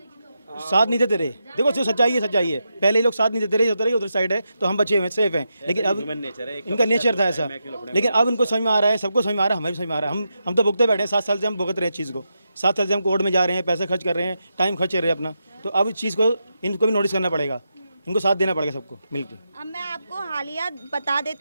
साथ नहीं देते रहे। देखो जो सच्चाई है, पहले ये लोग साथ नहीं देते रहे, होता रहे उधर साइड है तो हम बचे हुए सेफ हैं, लेकिन अब इनका नेचर था ऐसा। लेकिन अब इनको समझ में आ रहा है, सबको समझ में आ रहा है, हमें भी समझ में आ रहा है। हम तो भुगते बैठे हैं, 7 साल से हम भुगत रहे हैं चीज़ को, 7 साल से हम कोर्ट में जा रहे हैं, पैसे खर्च कर रहे हैं, टाइम खर्च कर रहे हैं अपना, तो अब इस चीज़ को इनको भी नोटिस करना पड़ेगा, इनको साथ देना पड़ेगा सबको मिलकर। अब मैं आपको हालिया बता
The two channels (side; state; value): both; inverted; correlation -0.86